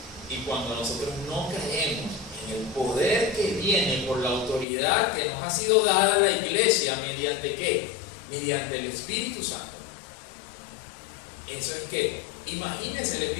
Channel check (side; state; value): right; drops out; at 4.7 s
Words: y cuando nosotros no creemos en el poder que viene por la autoridad que nos ha sido dada a la iglesia. ¿Mediante qué? Mediante el Espíritu Santo. Eso es que, imagínense el